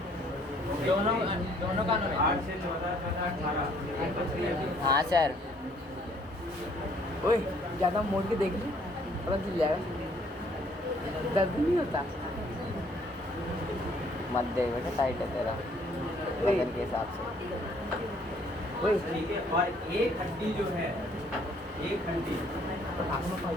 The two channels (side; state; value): both; normal; correlation 0.62